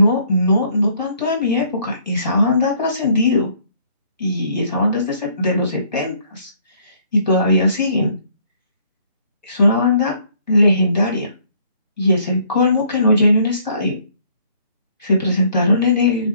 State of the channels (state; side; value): inverted; both; correlation -0.62